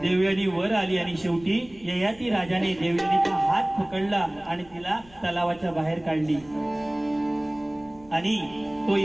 देवयानी वर आली आणि शेवटी ययाती राजाने देवयानीचा हात पकडला आणि तिला तलावाच्या बाहेर काढली. आणि तो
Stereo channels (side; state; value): left; noise; rumble, 25 dB below the sound